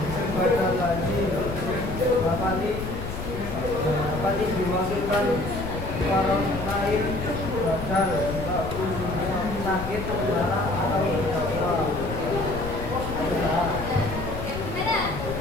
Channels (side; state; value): left; noise; rumble, 7 dB below the sound